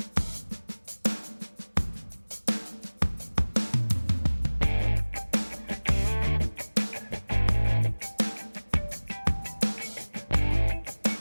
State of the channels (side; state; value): both; inverted; correlation -1.00